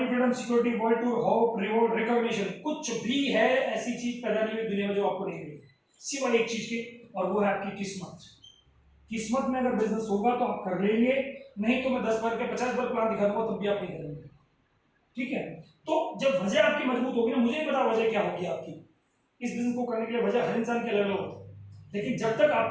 freedom, security, world tour, hope, reward, recognition, कुछ भी है ऐसी चीज पैदा नहीं हुई दुनिया में जो आपको नहीं मिली, सिवाय एक चीज के, और वो है आपकी किस्मत। किस्मत में अगर बिजनेस होगा तो आप कर लेंगे, नहीं तो मैं 10 बार के 50 बार प्लान दिखा दूंगा तब भी आप नहीं करेंगे। ठीक है, तो जब वजह आपकी मजबूत होगी ना, मुझे नहीं पता वजह क्या होगी आपकी इस बिजनेस को करने के लिए, वजह हर इंसान की अलग अलग होती है, लेकिन जब तक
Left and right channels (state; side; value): identical; both; correlation 1.00